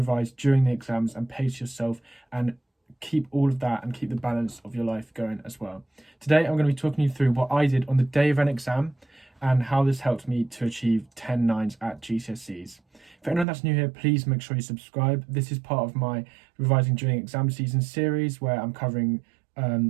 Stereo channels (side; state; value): left; drops out; at 13.5 s